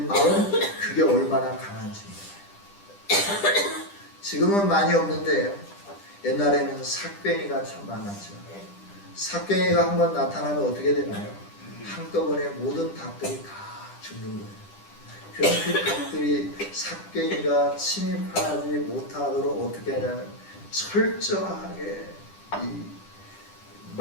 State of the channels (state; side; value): late; right; 10 ms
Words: 그게 얼마나 강한지입니다. 지금은 많이 없는데 옛날에는 삭괭이가 참 많았죠. 삭괭이가 한번 나타나면 어떻게 되나요? 한꺼번에 모든 닭들이 다 죽는 거예요. 그래서 그 닭들이 삭괭이가 침입하지 못하도록 어떻게 하냐면 철저하게